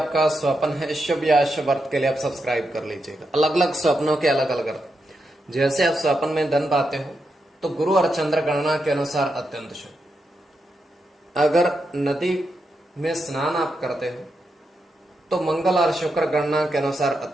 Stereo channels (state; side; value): normal; both; correlation 0.85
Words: स्वप्न है शुभ या अशुभ अर्थ के लिए आप सब्सक्राइब कर लीजिएगा। अलग अलग स्वप्नों के अलग अलग अर्थ। जैसे आप स्वप्न में धन पाते हो तो गुरु और चंद्र गणना के अनुसार अत्यंत शुभ। अगर नदी में स्नान आप करते हो तो मंगल और शुक्र गणना के अनुसार